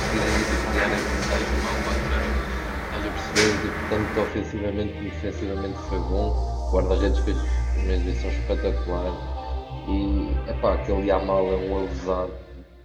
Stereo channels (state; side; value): identical; both; correlation 1.00